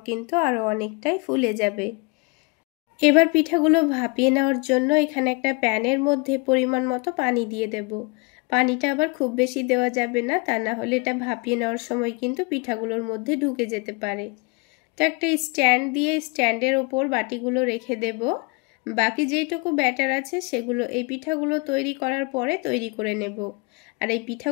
কিন্তু আরও অনেকটাই ফুলে যাবে। এবার পিঠাগুলো ভাপিয়ে নেওয়ার জন্য এখানে একটা প্যানের মধ্যে পরিমাণ মতো পানি দিয়ে দেব। পানিটা আবার খুব বেশি দেওয়া যাবে না, তা না হলে এটা ভাপিয়ে নেওয়ার সময় কিন্তু পিঠাগুলোর মধ্যে ঢুকে যেতে পারে। তো একটা স্ট্যান্ড দিয়ে স্ট্যান্ডের ওপর বাটিগুলো রেখে দেব। বাকি যেইটুকু ব্যাটার আছে সেগুলো এই পিঠাগুলো তৈরি করার পরে তৈরি করে নেব। আর এই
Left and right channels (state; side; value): quieter; right; 29.0 dB